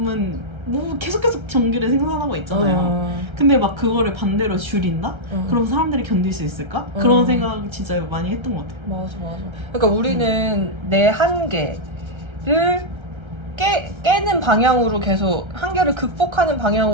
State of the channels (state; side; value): late; left; 1.3 ms